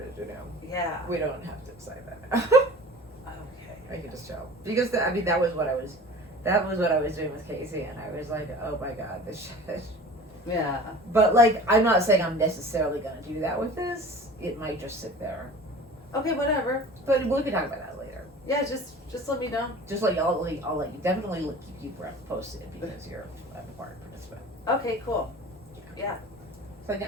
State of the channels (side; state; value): both; normal; correlation 0.41